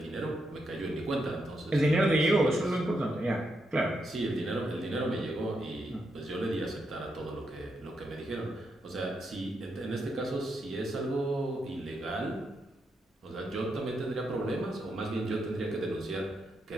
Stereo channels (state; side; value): normal; both; correlation 0.82